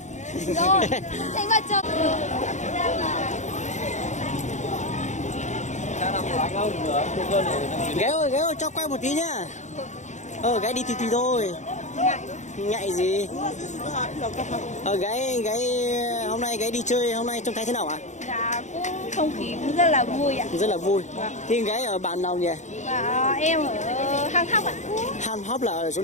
Rồi, thành vợ chồng. Gái ơi, cho quay một tí nhá. Gái đi tí thôi. Ngại gì? Gái hôm nay gái đi chơi, hôm nay trông thấy thế nào ạ? Dạ, cũng không khí cũng rất là vui ạ. Rất là vui. Thì gái ở bản nào nhỉ? Và em ở Hang Hóc ạ. Han Hop là ở chỗ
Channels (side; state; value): right; late; 0.34 ms